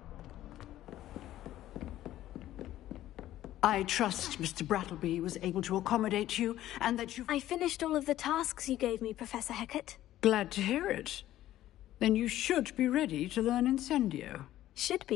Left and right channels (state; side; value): quieter; right; 13.7 dB